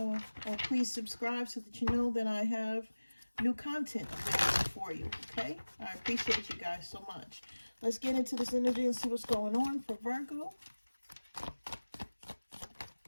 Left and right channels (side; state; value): both; inverted; correlation -1.00